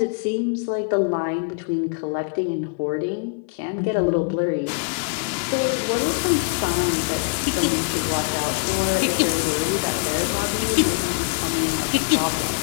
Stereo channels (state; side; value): quieter; right; 39.1 dB